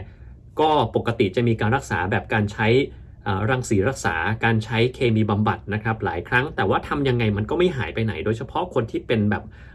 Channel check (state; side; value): identical; both; correlation 1.00